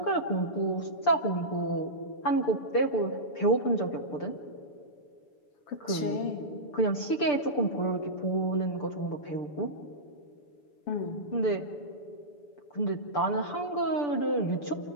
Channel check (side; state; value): right; late; 6.8 ms